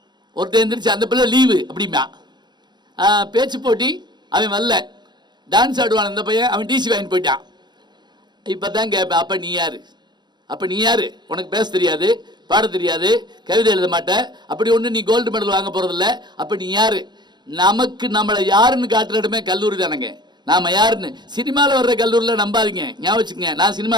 ஒருத்தர் எந்திரிச்சு அந்த பிள்ளை லீவு அப்படிமா, பேச்சு போட்டி அவன் வரல, டான்ஸ் ஆடுவான் அந்த பையன், அவன் டிசி வாங்கிட்டு போயிட்டான். இப்போ தான் கேட்பேன், அப்போ நீ யார்? அப்போ நீ யாரு? உனக்கு பேச தெரியாது, பாட தெரியாது, கவிதை எழுத மாட்டேன், அப்படி ஒன்று நீ கோல்டு மெடல் வாங்க போகிறதில்ல. அப்போ நீ யாரு? நமக்கு நம்மளை யாருன்னு காட்டுற இடமே கல்லூரி தானேங்க. நாம் யாருன்னு சினிமாவில் வர்ற கல்லூரியில் நம்பாதீங்க, ஞாபகம் வச்சுக்கங்க. நான்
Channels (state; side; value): late; left; 0.21 ms